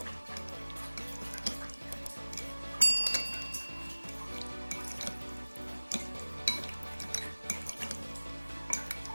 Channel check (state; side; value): inverted; both; correlation -1.00